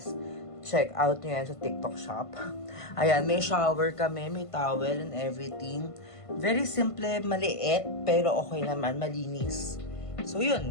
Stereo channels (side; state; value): right; late; 1.5 ms